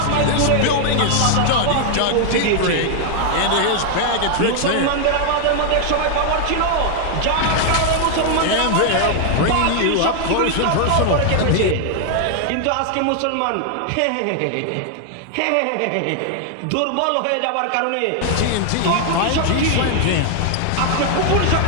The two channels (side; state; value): both; different; correlation 0.00